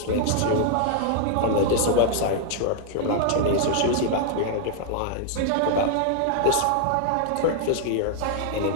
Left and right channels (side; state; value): both; different; correlation -0.01